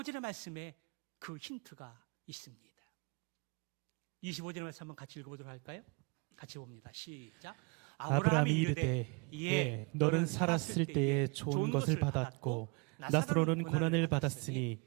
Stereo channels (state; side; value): quieter; left; 31.1 dB